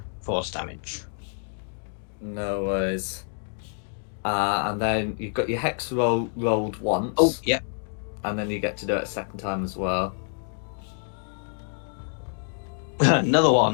Force damage. No worries. And then you've got your hex rolled once. Oh, yeah. And then you get to do it a second time as well. Another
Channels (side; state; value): right; silent; 60 dB below the other